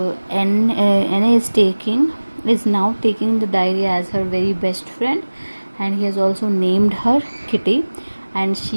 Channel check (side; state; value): both; inverted; correlation -1.00